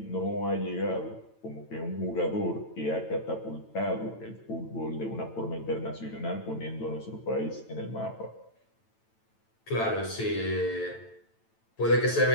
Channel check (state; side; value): late; right; 9.0 ms